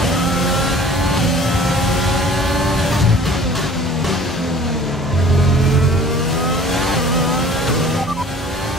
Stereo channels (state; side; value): normal; both; correlation 0.48